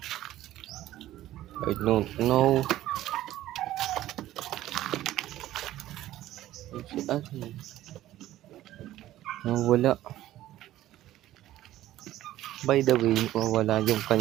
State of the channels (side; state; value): left; quieter; 14.2 dB